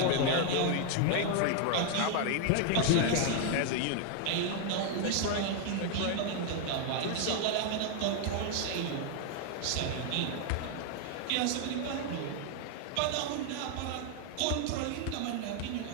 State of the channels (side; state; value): both; different; correlation 0.00